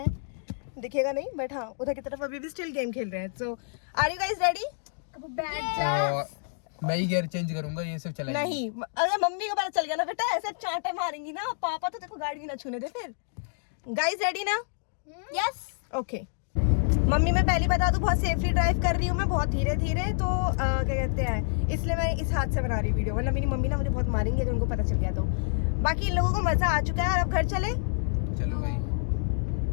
दिखेगा नहीं बट हाँ, उधर की तरफ अभी भी स्टिल गेम खेल रहे हैं। सो आर यू गाइस रेडी? मैं ही गियर चेंज करूंगा, ये सब चलाएंगे। नहीं, अगर मम्मी को पता चल गया ना बेटा, ऐसा चांटा मारेंगी ना पापा, तो देखो गाड़ी भी ना छूने दे फिर। गाइस रेडी ना? Yes okay. मम्मी मैं पहले बता दूं, बहुत सेफली ड्राइव कर रही हूँ मैं, बहुत धीरे धीरे, तो क्या कहते हैं, इसलिए मैं इस हाथ से बना रही वीडियो, वरना मेरी मम्मी ना मुझे बहुत मारेंगी अगर उनको पता चल गया तो। बाकी इन लोगों को मजा आ चुका है और अब घर चले। चलो भाई,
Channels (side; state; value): right; silent; digital silence